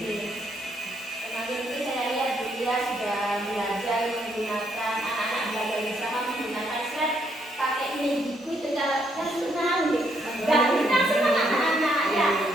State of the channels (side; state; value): both; normal; correlation 0.73